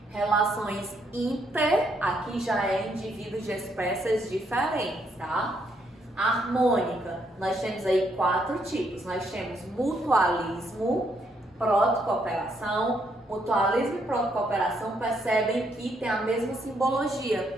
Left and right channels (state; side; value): normal; both; correlation 0.73